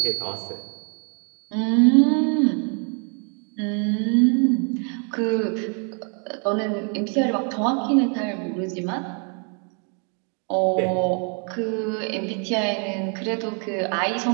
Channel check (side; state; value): left; quieter; 39.6 dB